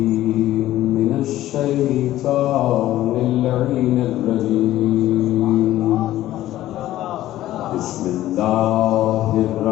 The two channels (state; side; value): quieter; right; 14.3 dB